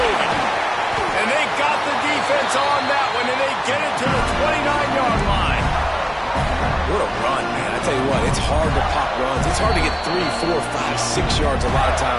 moving. And they got the defense on that one, and they get it to the 29-yard line. What a run, man. I tell you what, it's hard to pop runs. It's hard to get 3, 4, 5, 6 yards a lot of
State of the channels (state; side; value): identical; both; correlation 1.00